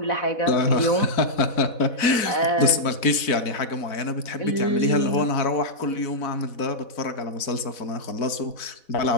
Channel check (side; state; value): right; late; 4.1 ms